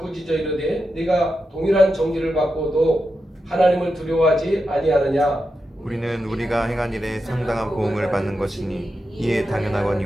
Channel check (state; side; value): normal; both; correlation 0.88